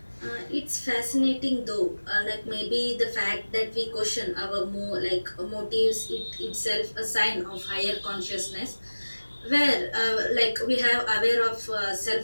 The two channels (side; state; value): both; inverted; correlation -1.00